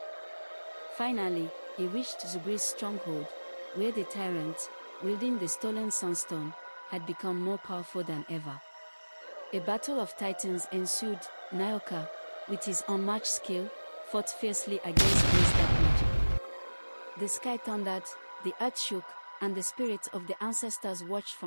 Finally, he reached Zubri's stronghold, where the tyrant, wielding the stolen Sunstone, had become more powerful than ever. A battle of titans ensued. Nyoka, with his unmatched skill, fought fiercely against Zubri's dark magic. The sky thundered, the earth shook, and the spirits of the ancestors watched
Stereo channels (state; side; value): inverted; both; correlation -1.00